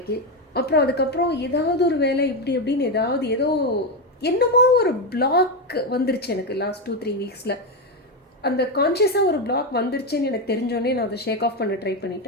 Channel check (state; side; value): normal; both; correlation 0.10